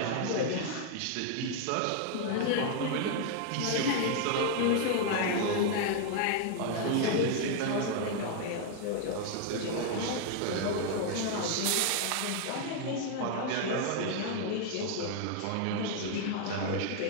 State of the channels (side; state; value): both; different; correlation 0.00